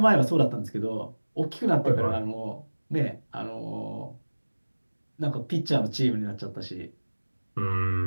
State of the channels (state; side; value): inverted; both; correlation -1.00